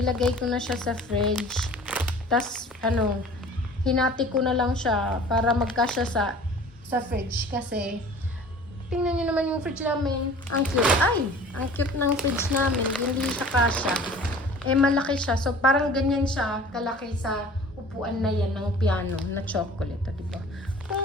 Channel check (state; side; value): normal; both; correlation 0.45